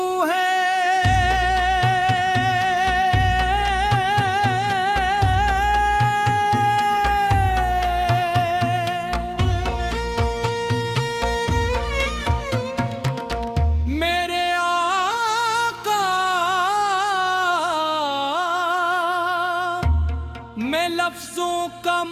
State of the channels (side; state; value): both; identical; correlation 1.00